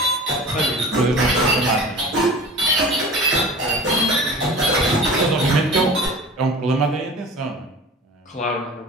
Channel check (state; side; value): normal; both; correlation 0.38